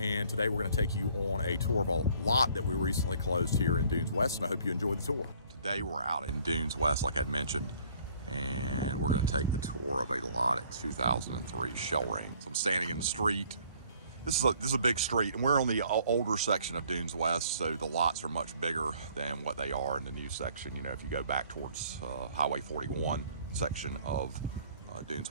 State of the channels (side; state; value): both; inverted; correlation -0.58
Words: today we're going to take you on a tour of a lot that we recently closed here in Dune West, and I hope you enjoy the tour. Today we're out in Dune West, like I'd mentioned, and we're going to take the tour of a lot at 2003 Shell Ring. So I'm standing in the street. This is a big street, and we're on the older section of Dune West, so the lots are much bigger than what they are in the new section. You know, if you go back towards Highway 41 section of Dune